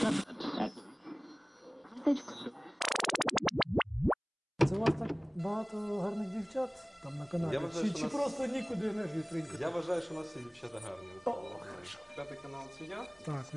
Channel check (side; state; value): both; identical; correlation 1.00